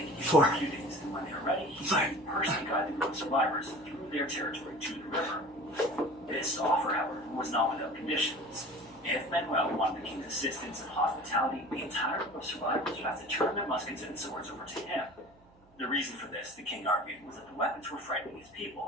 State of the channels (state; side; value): noise; right; hum, 29 dB below the sound